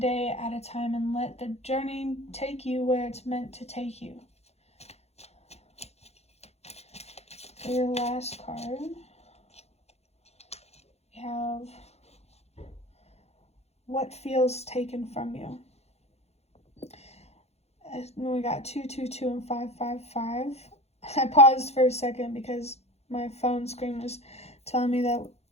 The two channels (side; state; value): right; late; 0.31 ms